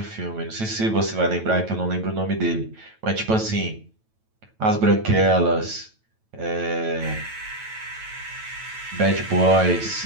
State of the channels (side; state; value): left; late; 9.1 ms